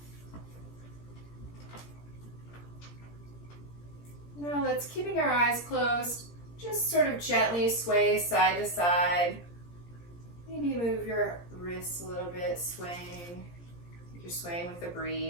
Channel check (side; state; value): right; late; 17 ms